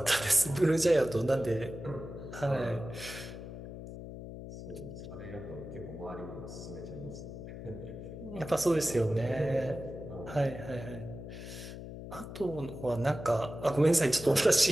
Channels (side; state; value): left; noise; hum, 10 dB below the sound